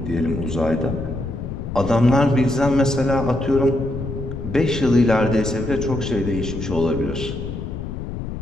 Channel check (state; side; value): noise; left; rumble, 7 dB below the sound